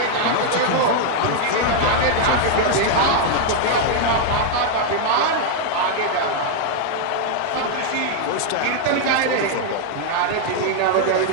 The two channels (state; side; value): different; both; correlation 0.00